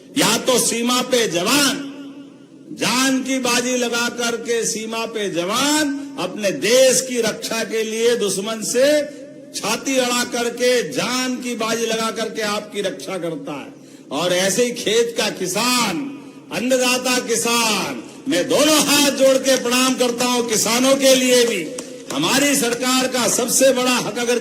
या तो सीमा पे जवान जान की बाजी लगा करके, सीमा पे जवान अपने देश की रक्षा के लिए दुश्मन से छाती अड़ा करके, जान की बाजी लगा करके आपकी रक्षा करता है। और ऐसे ही खेत का किसान, अन्नदाता किसान, मैं दोनों हाथ जोड़ के प्रणाम करता हूं किसानों के लिए भी। हमारी सरकार का सबसे बड़ा हक अगर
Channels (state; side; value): identical; both; correlation 1.00